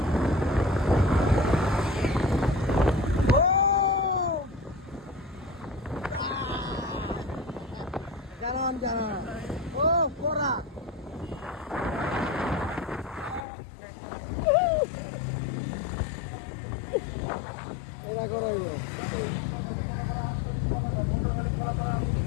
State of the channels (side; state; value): right; drops out; at 13.5 s